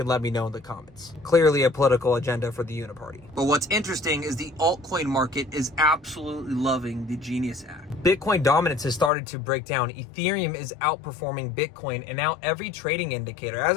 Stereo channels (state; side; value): drops out; right; at 9.1 s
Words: let me know in the comments. Clearly a political agenda for the Uniparty. But what's interesting is the altcoin market is absolutely loving the Genius Act. Bitcoin dominance has started to break down. Ethereum is outperforming Bitcoin, and now every trading indicator.